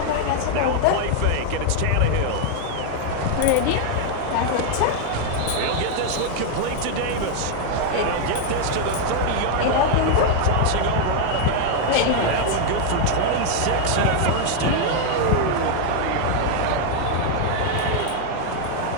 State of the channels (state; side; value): different; both; correlation 0.00